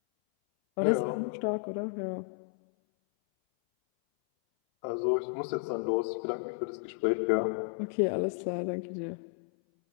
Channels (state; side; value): silent; right; 56 dB below the other